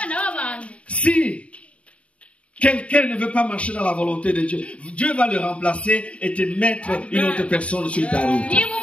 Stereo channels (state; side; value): late; right; 0.063 ms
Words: b'abantu Si quelqu'un ne veut pas marcher dans la volonté de Dieu, Dieu va le remplacer et te mettre une autre personne sur ta route. niba